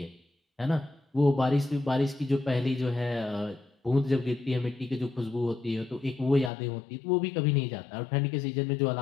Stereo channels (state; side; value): drops out; right; at 6.5 s